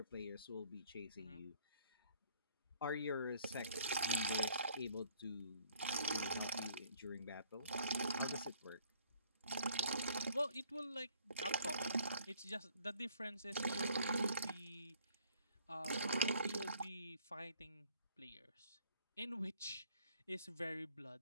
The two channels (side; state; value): both; inverted; correlation -0.61